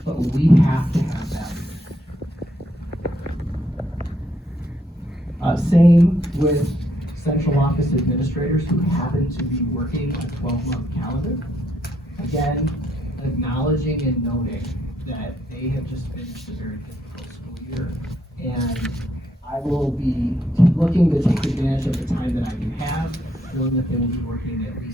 but we have to have value. Same with central office administrators who happen to be working a 12-month calendar. Again, acknowledging and noting that they have just finished a very difficult school year, and I will be looking to take advantage of the time that I do have, knowing that they will be working at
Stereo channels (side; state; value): both; normal; correlation 0.74